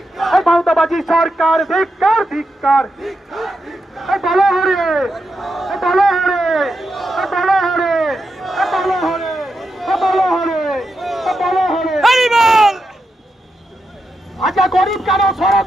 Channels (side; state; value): both; normal; correlation 0.86